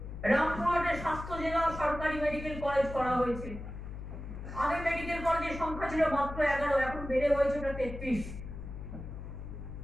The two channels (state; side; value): noise; left; hum, 9 dB below the sound